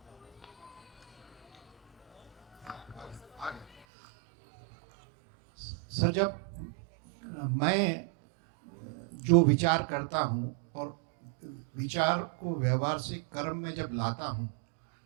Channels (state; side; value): drops out; left; at 3.9 s